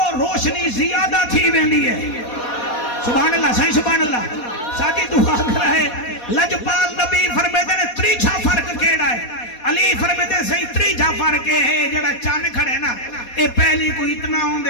روشنی زیادہ تھی ویندی ہے سبحان اللہ صحیح سبحان اللہ ساجی دعا کر رہے لجپال نبی فرمیدن تریچھا فرق کیڑا ہے علی فرمیدن صحیح تریچھا فرق ہے جڑا چان کھڑے نا اے پہلی کو اتنا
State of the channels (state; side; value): late; right; 4.2 ms